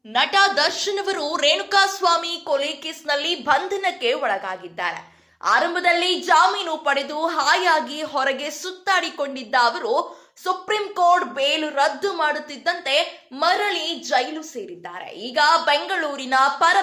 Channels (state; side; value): identical; both; correlation 1.00